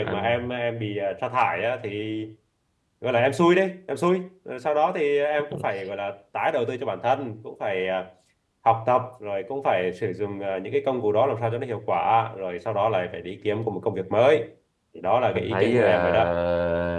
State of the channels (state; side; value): identical; both; correlation 1.00